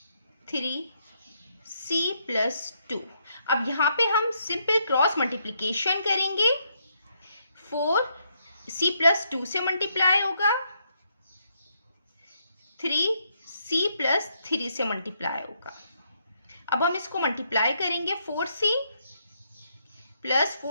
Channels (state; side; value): inverted; both; correlation -0.75